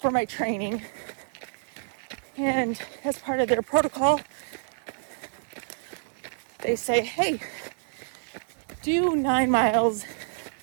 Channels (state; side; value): silent; left; digital silence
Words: my training, and as part of their protocol, they say, hey, do 9 miles